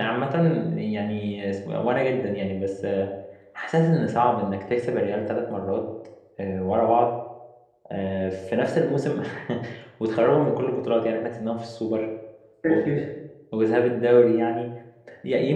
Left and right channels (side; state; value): both; identical; correlation 1.00